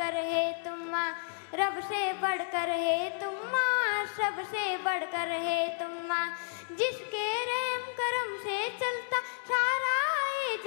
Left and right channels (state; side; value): silent; right; digital silence